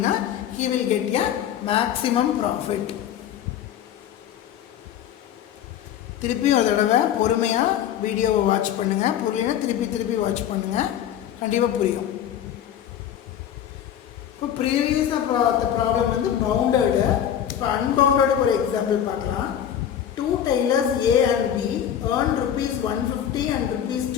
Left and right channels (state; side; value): quieter; right; 9.9 dB